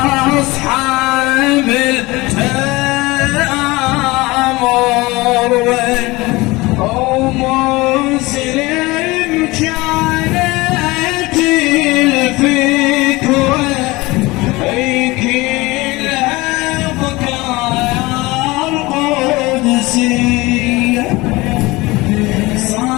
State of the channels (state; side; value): quieter; right; 21.6 dB